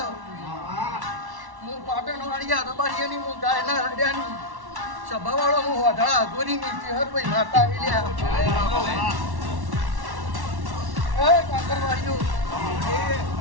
હું પાટણ વાળિયા રબારીયાની હું ગાયના રડ્યાની સભાવાળો હું વાઢા ગોરીની ચેહરભાઈ માતા આવેલ્યા એ કાંકરવાડીઓ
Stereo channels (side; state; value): left; late; 1.1 ms